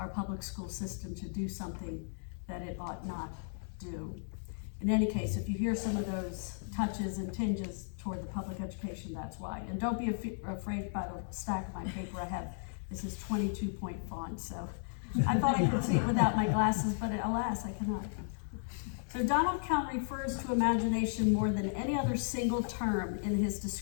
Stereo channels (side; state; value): right; silent; digital silence